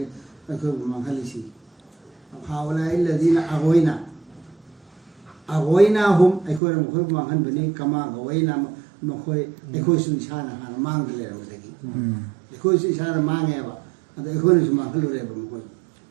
mangalisi haula alladhina aghwayna hum aikoi mukhoi mangan bani kama aghwayna mukhoi aikoi su isana hana mangale rawdagi aikoi su isana mangeba ado aikoi su mangalure ba mukhoi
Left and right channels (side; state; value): left; drops out; at 6.6 s